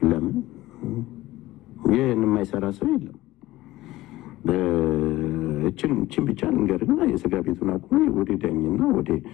ለምን ይህን የማይሰራ ሰው የለም። እችን ብቻ ንገርና የስጋ ቤቱን አቁሜ ወደ ዳኝና ወደ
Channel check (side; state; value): right; quieter; 17.2 dB